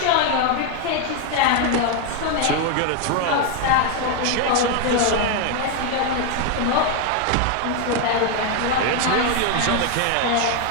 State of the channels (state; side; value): different; both; correlation 0.01